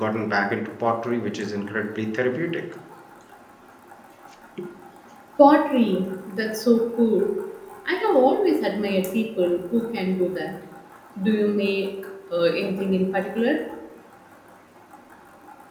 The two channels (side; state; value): both; identical; correlation 1.00